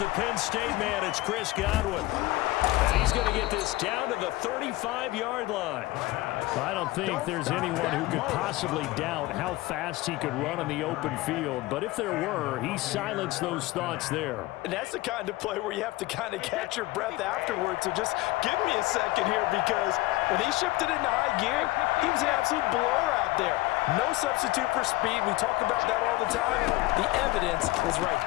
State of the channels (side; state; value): right; quieter; 19.2 dB